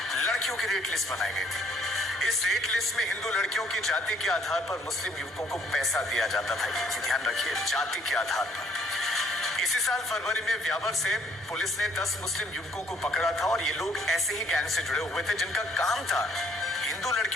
लड़कियों की रेट लिस्ट बनाई गई थी। इस रेट लिस्ट में हिंदू लड़कियों की जाति के आधार पर मुस्लिम युवकों को पैसा दिया जाता था। ये ध्यान रखिए, जाति के आधार पर। इसी साल फरवरी में ब्यावर से पुलिस ने 10 मुस्लिम युवकों को पकड़ा था और ये लोग ऐसे ही गैंग से जुड़े हुए थे जिनका काम था हिंदू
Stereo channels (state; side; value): normal; both; correlation 0.64